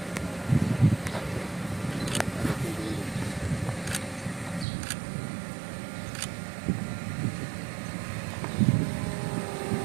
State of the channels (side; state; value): left; drops out; at 4.7 s